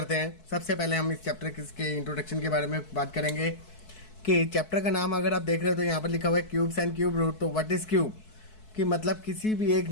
हैं। सबसे पहले हम इस चैप्टर के इंट्रोडक्शन के बारे में बात करेंगे कि चैप्टर का नाम अगर आप देख रहे हो तो यहाँ पर लिखा हुआ है क्यूब्स एंड क्यूब रूट। तो व्हाट इज क्यूब कि मतलब किसी भी एक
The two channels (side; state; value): right; late; 4.6 ms